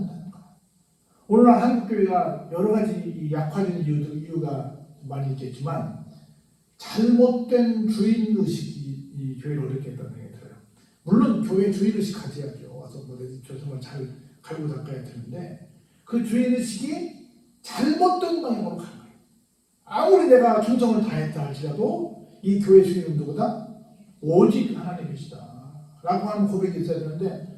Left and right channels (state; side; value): identical; both; correlation 1.00